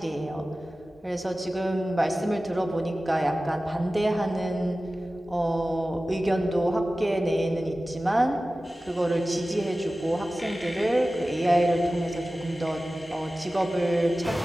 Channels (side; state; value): both; normal; correlation 0.96